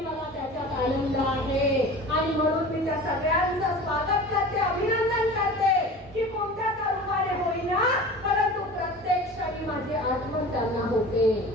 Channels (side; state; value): both; normal; correlation 0.37